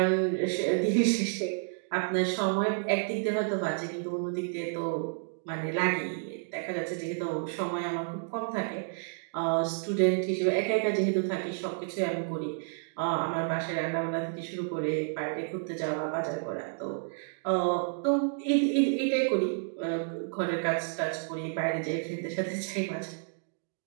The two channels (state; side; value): silent; left; digital silence